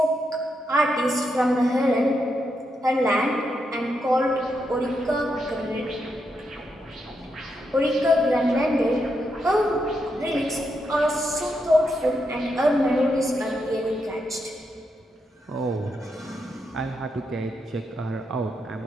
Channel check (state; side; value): normal; both; correlation 0.82